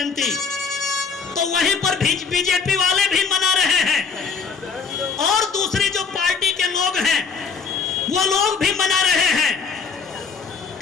तो वहीं पर बीजेपी वाले भी मना रहे हैं, और दूसरी जो पार्टी के लोग हैं वो लोग भी मना रहे हैं।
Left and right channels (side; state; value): right; quieter; 5.5 dB